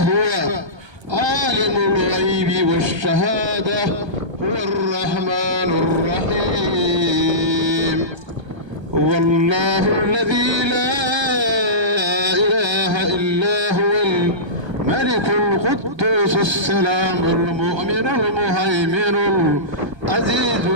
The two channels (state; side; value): late; left; 1.3 ms